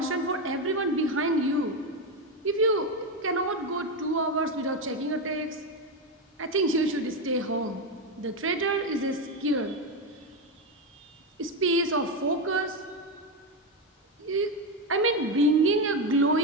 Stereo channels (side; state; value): both; normal; correlation 0.11